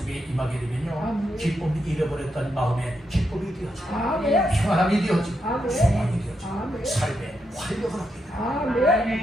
임하게 되면요 기쁨이 잃어버렸던 마음에 기쁨이 되어지고 평안함이 되어지고 소망이 되어지고 삶의 활력을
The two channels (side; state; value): both; normal; correlation 0.82